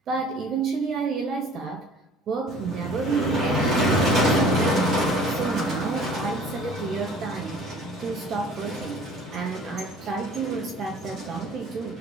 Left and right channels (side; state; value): both; normal; correlation 0.49